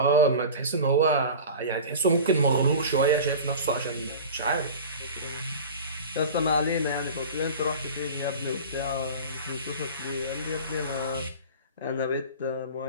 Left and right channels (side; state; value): both; inverted; correlation -0.35